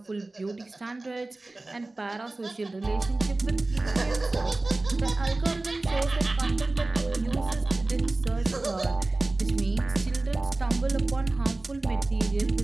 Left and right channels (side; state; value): left; quieter; 3.0 dB